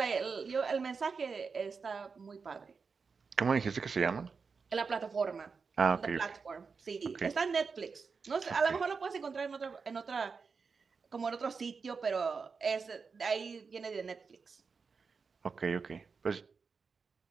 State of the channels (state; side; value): quieter; left; 5.1 dB